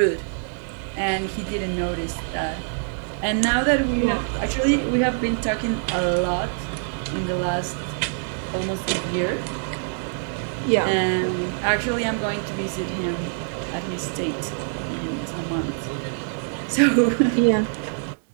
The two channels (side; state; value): left; silent; 62 dB below the other